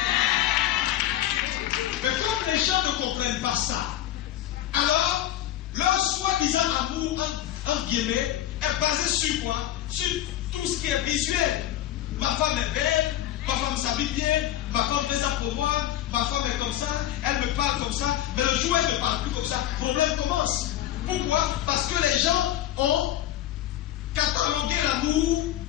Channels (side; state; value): right; quieter; 13.1 dB